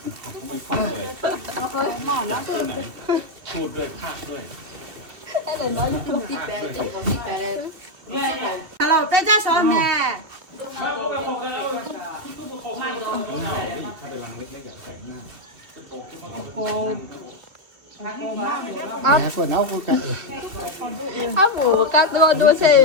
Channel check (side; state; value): left; late; 2.7 ms